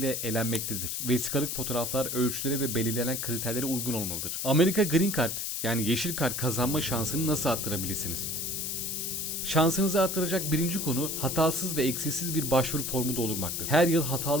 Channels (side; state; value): left; noise; hiss, 2 dB below the sound